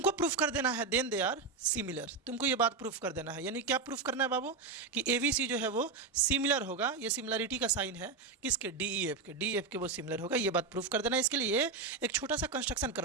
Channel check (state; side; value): quieter; left; 4.4 dB